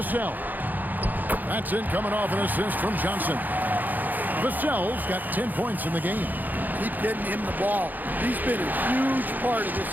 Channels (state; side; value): late; left; 0.085 ms